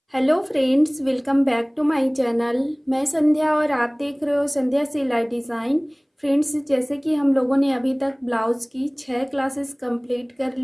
Hello friends, welcome back to my channel. मैं संध्या और आप देख रहे हो संध्या सिलाई डिज़ाइन। फ्रेंड्स, जैसे कि हम लोगों ने अभी तक ब्लाउज़ की 6 क्लासेस कंप्लीट कर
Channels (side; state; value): both; identical; correlation 1.00